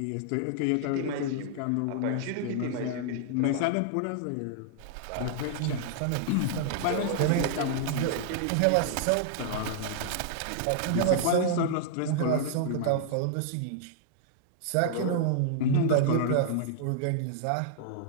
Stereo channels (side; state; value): both; different; correlation -0.01